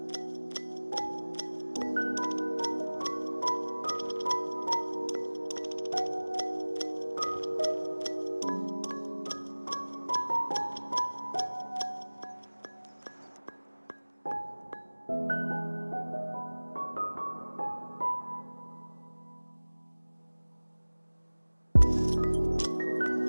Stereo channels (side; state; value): both; inverted; correlation -1.00